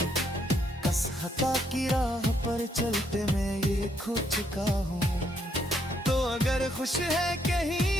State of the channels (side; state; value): both; normal; correlation 0.73